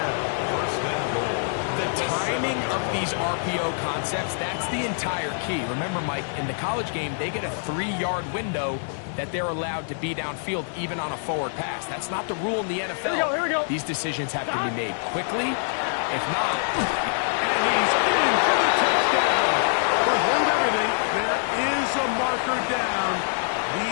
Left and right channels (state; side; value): silent; right; digital silence